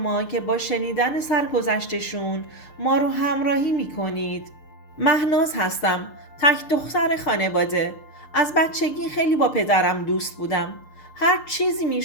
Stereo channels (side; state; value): right; late; 6.7 ms